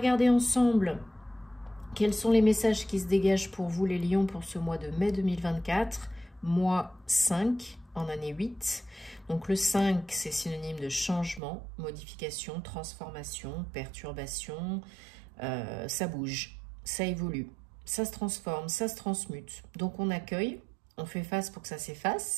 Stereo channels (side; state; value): left; drops out; at 11.4 s